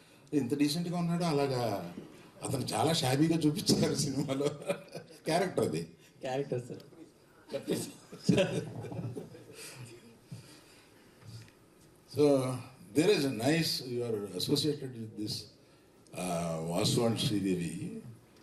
ఇంత డీసెంట్గా ఉన్నాడు. అలాగా అతను చాలా షాబీగా చూపించారు సినిమాలో. క్యారెక్టర్ అది character sir. So there is nice you are associated with this Vasu and Sridevi.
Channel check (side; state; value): both; identical; correlation 1.00